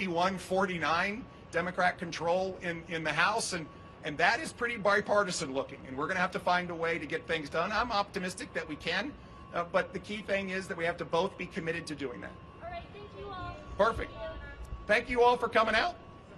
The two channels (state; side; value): identical; both; correlation 1.00